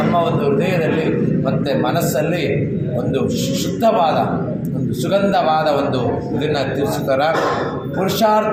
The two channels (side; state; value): both; identical; correlation 1.00